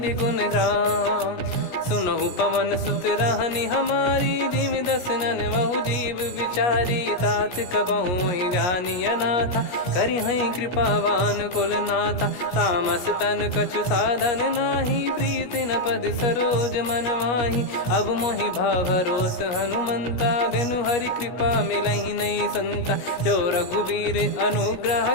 गुण राम। सुनहु पवन सुत रहनि हमारी, जिमि दसनन बहु जीव विचारी। तात कबहु ही जानिय नाथा, करिहै कृपावान कुल नाथा। तामस तन कछु साधन नाही, प्रीति न पद सरोज मन माही। अब मोहि भाव भरोस हनुमंता, बिनु हरि कृपा मिलहि नहीं संता। जो रघुबीर अनुग्रह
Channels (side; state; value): right; late; 17 ms